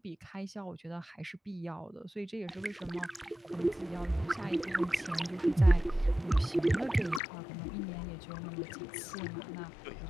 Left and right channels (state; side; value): drops out; right; at 7.2 s